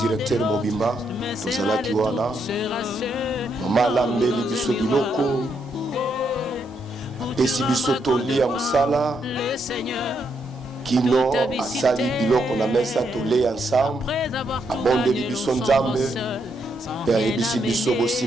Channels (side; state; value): both; normal; correlation 0.78